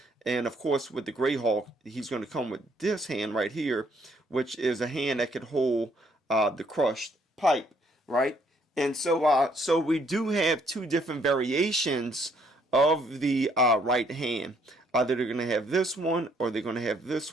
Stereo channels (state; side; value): normal; both; correlation 0.67